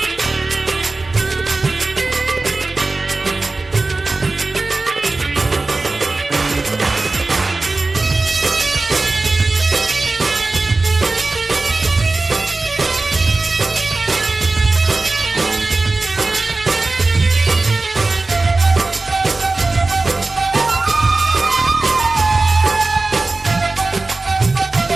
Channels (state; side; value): quieter; left; 3.4 dB